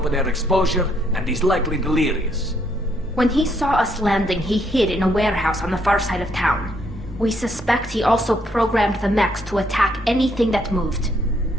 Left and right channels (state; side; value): normal; both; correlation 0.71